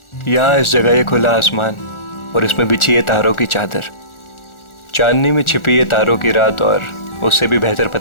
यहाँ इस जगह ये खुला आसमान और इसमें बिछी है तारों की चादर, चांदनी में छिपी है तारों की रात, और उससे भी बेहतर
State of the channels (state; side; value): late; right; 1.4 ms